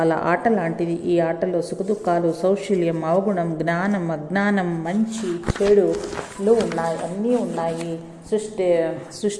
ఆట లాంటిది. ఈ ఆటలో సుఖదుఖాలు, సౌశల్యం, అవగుణం, జ్ఞానం, అజ్ఞానం, మంచి చెడులు ఉన్నాయి, అన్నీ ఉన్నాయి.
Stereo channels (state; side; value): identical; both; correlation 1.00